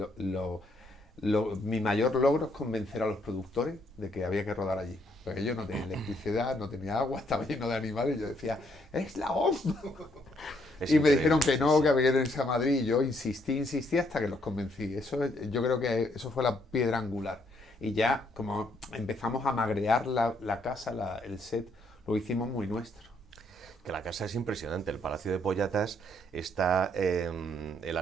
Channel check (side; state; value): both; normal; correlation 0.71